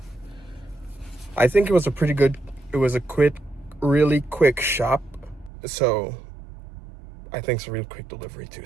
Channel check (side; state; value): left; drops out; at 5.5 s